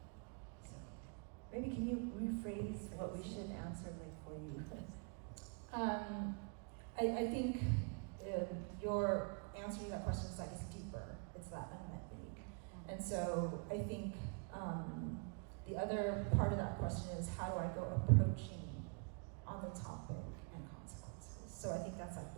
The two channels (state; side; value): quieter; left; 38.4 dB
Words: So maybe can you rephrase what we should answer for you? I think your answer to that question is like it's deeper. It's that unmet need. And so I think the other part of that question is how do I go approaching on the topic and consequences. So I think that's like